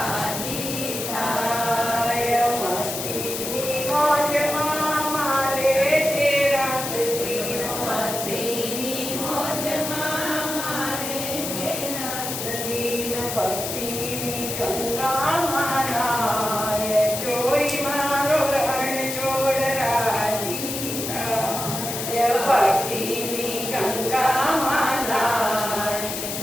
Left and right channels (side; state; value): left; noise; hiss, 5 dB below the sound